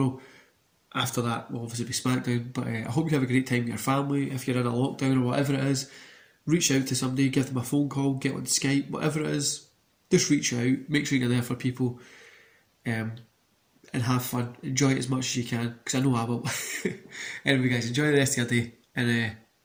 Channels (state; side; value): identical; both; correlation 1.00